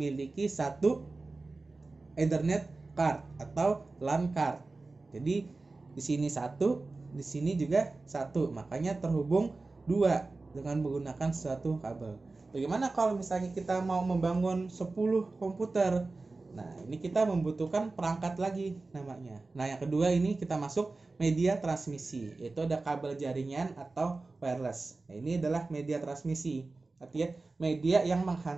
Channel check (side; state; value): left; quieter; 3.5 dB